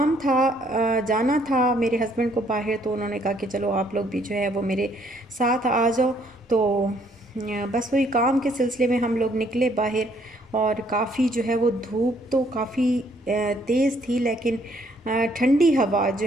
था, जाना था मेरे हस्बैंड को बाहर, तो उन्होंने कहा कि चलो आप लोग भी जो है वो मेरे साथ आ जाओ। तो बस वही काम के सिलसिले में हम लोग निकले बाहर। और काफ़ी जो है वो धूप तो काफ़ी तेज़ थी, लेकिन ठंडी हवा जो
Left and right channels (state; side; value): normal; both; correlation 0.66